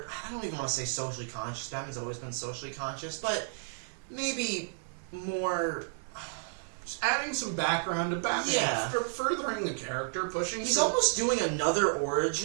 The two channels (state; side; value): silent; left; 56 dB below the other